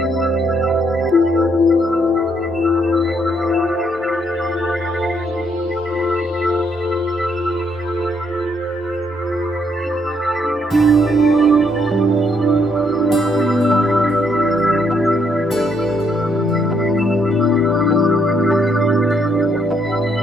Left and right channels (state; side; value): normal; both; correlation 0.73